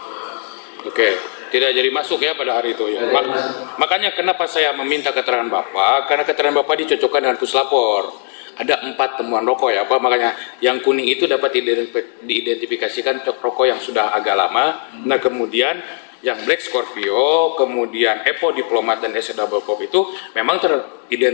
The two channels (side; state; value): right; silent; 57 dB below the other